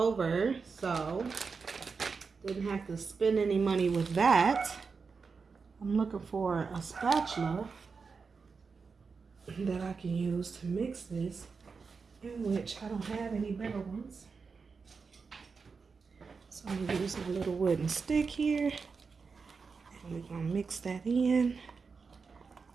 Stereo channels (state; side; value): quieter; left; 5.0 dB